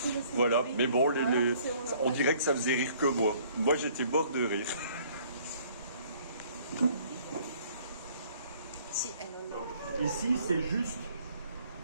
Voilà, mais bon, on dirait que ça faisait rire que moi. Moi, j'étais mort de rire. Ici, c'est juste,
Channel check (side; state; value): both; inverted; correlation -0.59